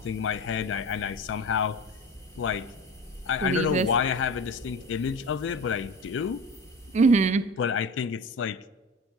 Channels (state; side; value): normal; both; correlation 0.32